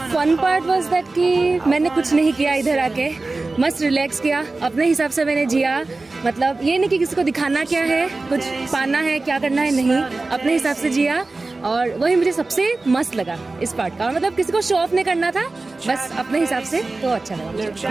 fun part was that कि मैंने कुछ नहीं किया, इधर आके मस्त रिलैक्स किया, अपने हिसाब से मैंने जिया। मतलब ये नहीं कि किसी को दिखाना क्या है, कुछ पाना है, क्या करना है, नहीं, अपने हिसाब से जिया। और वही मुझे सबसे मस्त लगा इस पार्ट का। और मतलब किसी को शो ऑफ नहीं करना था, बस अपने हिसाब से, तो अच्छा लगा।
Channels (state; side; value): quieter; left; 3.4 dB